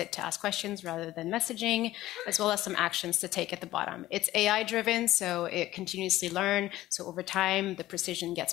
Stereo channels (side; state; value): right; quieter; 15.6 dB